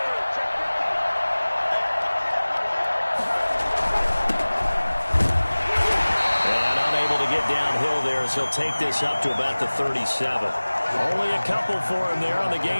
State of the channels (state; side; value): inverted; both; correlation -1.00